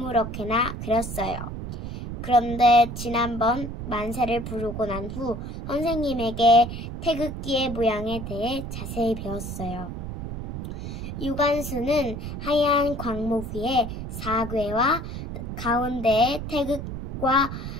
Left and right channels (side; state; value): right; noise; rumble, 7 dB below the sound